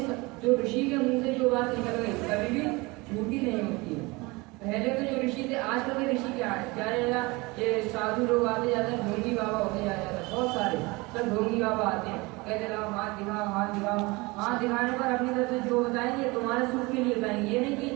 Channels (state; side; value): quieter; left; 24.4 dB